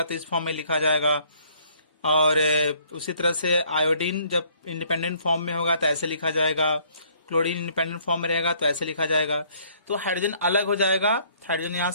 तो इस फॉर्म में लिखा जाएगा। और उसी तरह से आयोडीन जब इंडिपेंडेंट फॉर्म में होगा तो ऐसे लिखा जाएगा। क्लोरीन इंडिपेंडेंट फॉर्म में रहेगा तो ऐसे लिखा जाएगा। तो हाइड्रोजन अलग हो जाएगा, हाइड्रोजन यहाँ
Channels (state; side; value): inverted; both; correlation -0.62